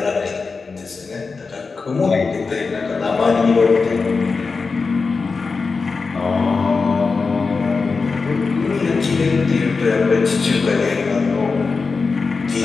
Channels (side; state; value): right; quieter; 4.5 dB